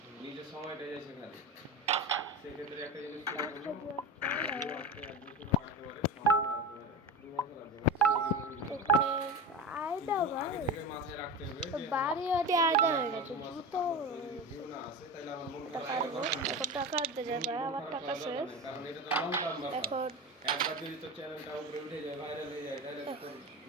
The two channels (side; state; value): both; normal; correlation 0.25